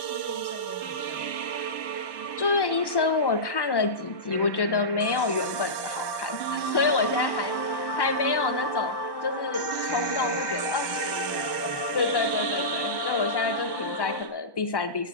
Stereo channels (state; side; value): late; right; 1.1 ms